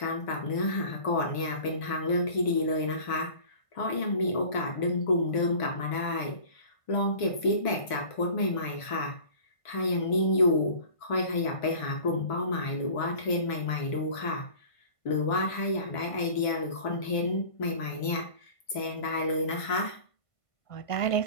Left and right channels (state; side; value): late; right; 1.5 ms